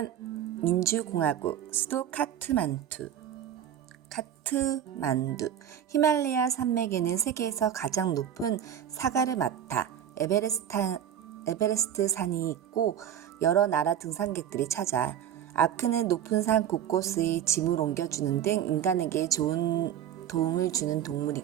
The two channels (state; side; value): quieter; left; 9.9 dB